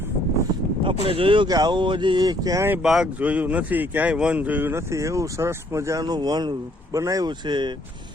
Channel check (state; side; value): normal; both; correlation 0.65